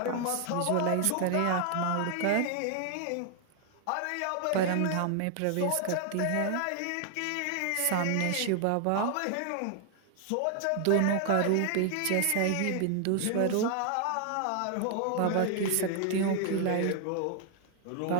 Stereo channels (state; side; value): different; both; correlation 0.00